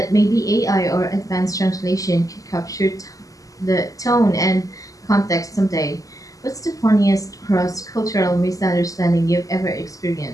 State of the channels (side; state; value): right; late; 0.17 ms